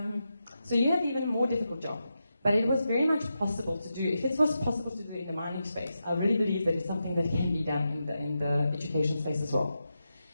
so you have even more difficult job. But it was very much possible to do. If it was possible to do in the mining space, I really believe that it's something that can be done in the education space as well.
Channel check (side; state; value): both; inverted; correlation -0.88